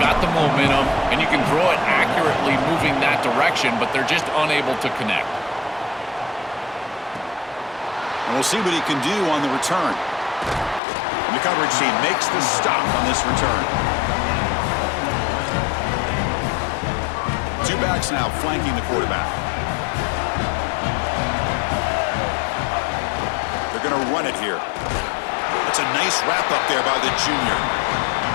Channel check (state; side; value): drops out; right; at 10.8 s